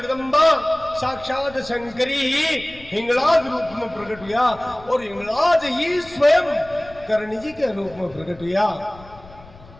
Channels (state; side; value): noise; left; rumble, 21 dB below the sound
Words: साक्षात शंकरी ही हिंगलाज रूप में प्रकट हुआ और हिंगलाज ही स्वयं करणी जी के रूप में प्रकट हुआ।